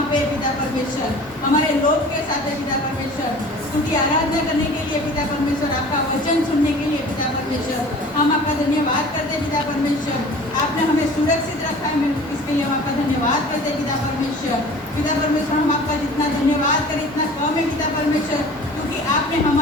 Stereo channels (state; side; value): normal; both; correlation 0.44